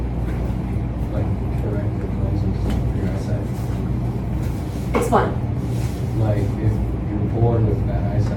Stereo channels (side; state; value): both; identical; correlation 1.00